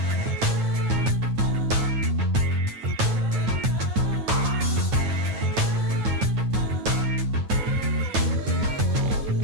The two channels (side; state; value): left; late; 9.2 ms